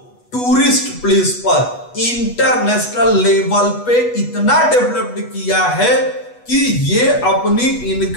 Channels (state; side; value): late; right; 8.2 ms